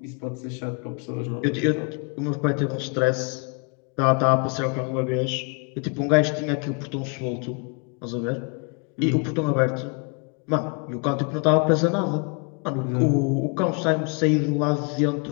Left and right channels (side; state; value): right; quieter; 35.4 dB